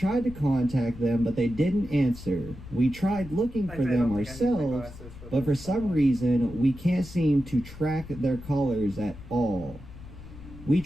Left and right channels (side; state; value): left; noise; rumble, 15 dB below the sound